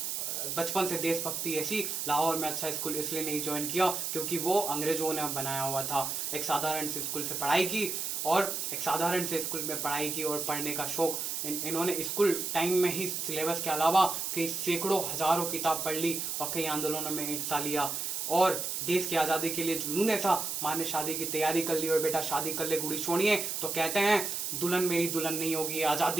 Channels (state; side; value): noise; right; hiss, 2 dB below the sound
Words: देशभक्ति ऐसी लाहौर में अच्छा स्कूल इसलिए नहीं ज्वाइन किया क्योंकि वो अंग्रेजों ने बनाया हुआ था। एक साधारण से स्कूल से पढ़ाई की और एक साधारण से स्कूल में पढ़ाई की और पढ़ने का शौक इन्होंने स्कूल टाइम में ही सिलेबस के अलावा कई सैकड़ों हजारों किताब पढ़ ली और कई आंदोलनों में हिस्सा लिया। और देश की आज़ादी के लिए जुनून ऐसा, माँ ने शादी की तैयारी कर ली और बेटा शादी कर ले गुड़ी छोड़िए तो कहते हैं दुल्हन मेरी दुल्हन नहीं होगी,